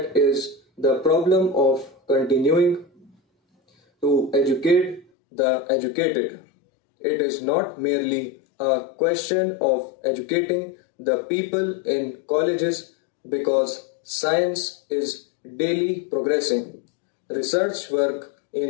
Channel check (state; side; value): drops out; right; at 5.1 s